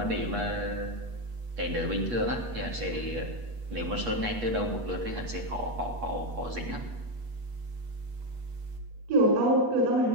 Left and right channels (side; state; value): left; late; 8.3 ms